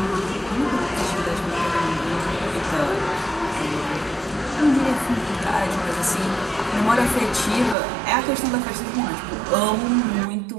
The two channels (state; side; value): drops out; left; at 7.8 s